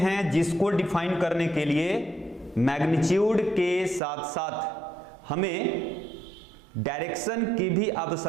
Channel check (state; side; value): drops out; left; at 4.0 s